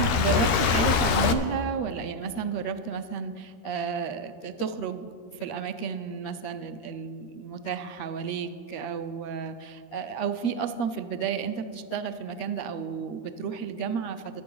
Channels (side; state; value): right; late; 13 ms